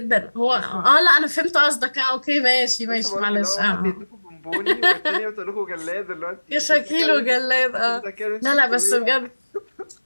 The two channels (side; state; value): both; inverted; correlation -1.00